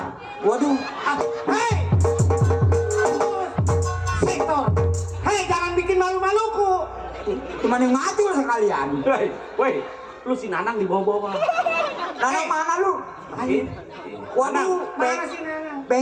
Waduh, Hei! Sektor. Hei, jangan bikin malu-maluku. cuman yang mati lu sekalian. Woi, lu si Nanang di bawah-bawah. Nanang mana lu? Ini. Waduh, Mana sih Nana?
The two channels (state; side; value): identical; both; correlation 1.00